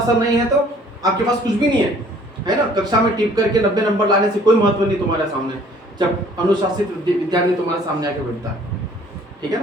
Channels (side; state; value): both; normal; correlation 0.56